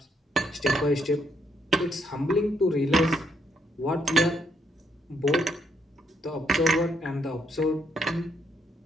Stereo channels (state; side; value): normal; both; correlation 0.74